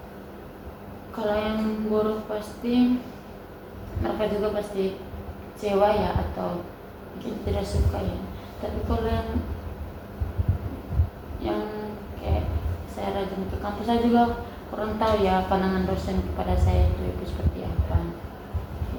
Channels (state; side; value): identical; both; correlation 1.00